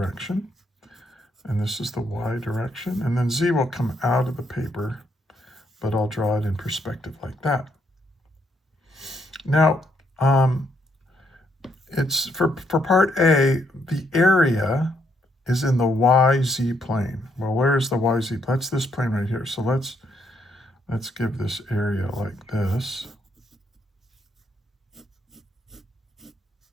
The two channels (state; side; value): normal; both; correlation 0.74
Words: and this is the Y direction, and then Z will come out of the paper, but I'll draw it in perspective like that. Now, it's for part A, the area is in the YZ plane. Well, where is the YZ? That's this plane right here. So let's give this area like this.